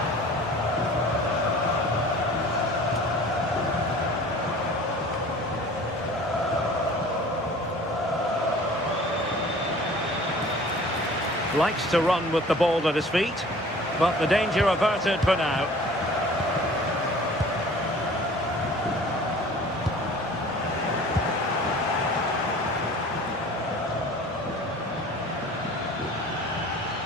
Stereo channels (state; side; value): normal; both; correlation 0.46